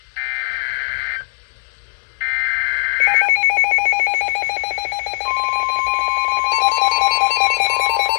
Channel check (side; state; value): right; silent; digital silence